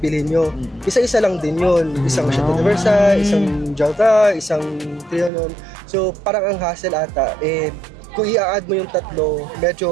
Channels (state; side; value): drops out; left; at 5.3 s